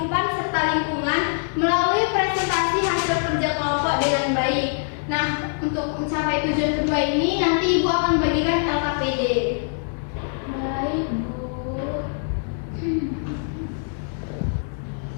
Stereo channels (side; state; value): right; silent; 63 dB below the other